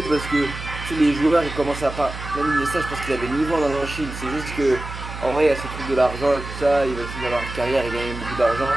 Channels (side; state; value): right; noise; hum, 10 dB below the sound